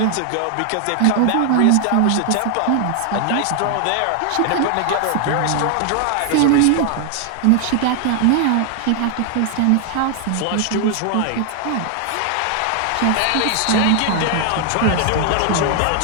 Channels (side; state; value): both; different; correlation 0.00